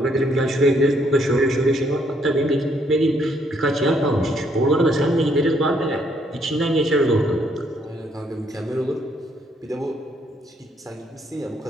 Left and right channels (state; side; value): normal; both; correlation 0.70